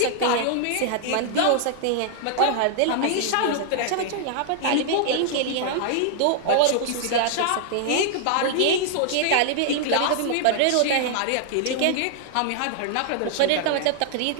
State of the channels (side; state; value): both; different; correlation 0.00